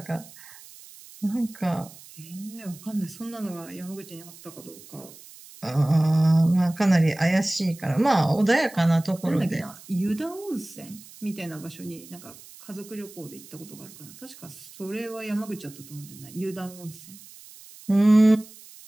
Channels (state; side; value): noise; right; hiss, 19 dB below the sound